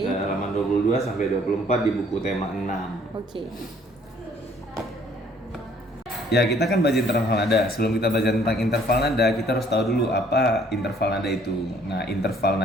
Halaman 22 sampai 24 di buku tema 6. Oke. Ya, kita kan belajar interval nada. Sebelum kita belajar tentang interval nada, kita harus tahu dulu apa interval nada itu. Nah, interval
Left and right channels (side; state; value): both; normal; correlation 0.60